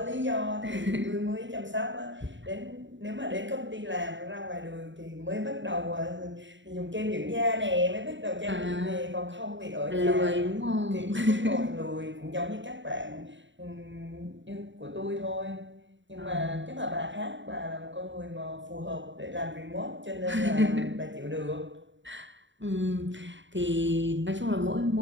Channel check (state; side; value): late; left; 0.54 ms